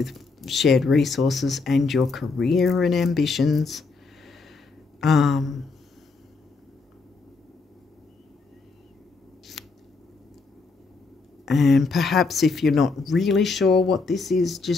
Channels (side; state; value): right; quieter; 4.1 dB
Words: shared resources and your career and ambitions. And perhaps if you're not really sure what this is